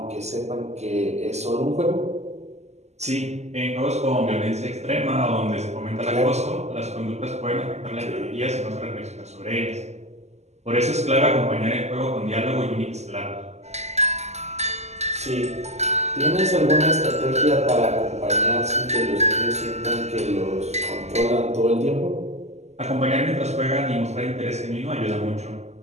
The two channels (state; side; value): late; left; 0.33 ms